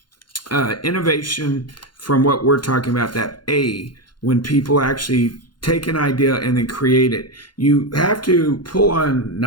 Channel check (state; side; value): late; right; 0.71 ms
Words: innovation, from what we're talking about, that when people actually take an idea and then create it, you have to pull on